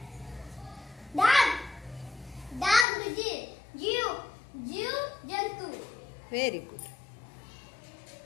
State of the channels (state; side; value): drops out; right; at 2.9 s